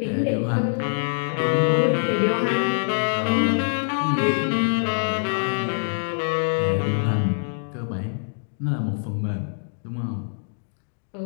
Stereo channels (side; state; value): right; silent; digital silence